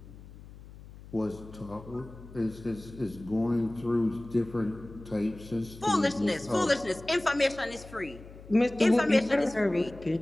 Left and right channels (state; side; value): noise; left; hum, 18 dB below the sound